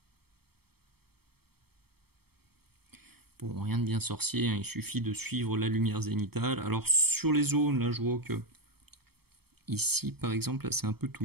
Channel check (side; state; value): left; late; 0.96 ms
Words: Bon, rien de bien sorcier, hein, il suffit de suivre la lumière zénithale. Alors sur les zones, là je vois que ici par exemple, c'est un peu too